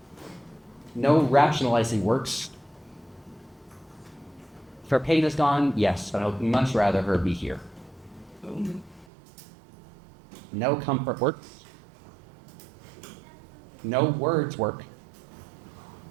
No rationalizing works. If her pain is gone, yes, but I would much rather her be here. No comfort works. No words work.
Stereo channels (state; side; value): drops out; left; at 9.1 s